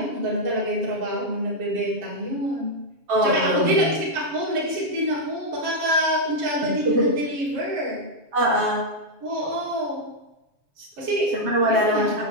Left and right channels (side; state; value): left; late; 7.2 ms